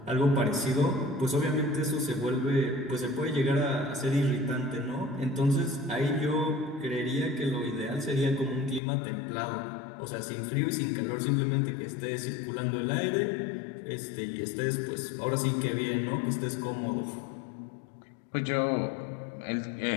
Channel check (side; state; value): right; drops out; at 8.8 s